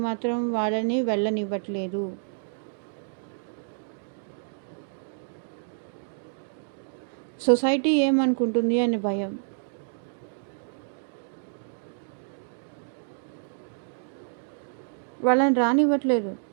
మాత్రం వాళ్ళని వెళ్ళనివ్వట్లేదు. సొసైటీ ఏమనుకుంటుంది అని భయం. వాళ్ళని రానివ్వట్లేదు.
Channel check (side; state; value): left; silent; digital silence